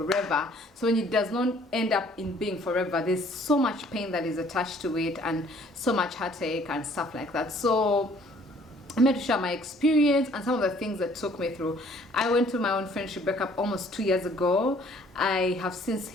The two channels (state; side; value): normal; both; correlation 0.58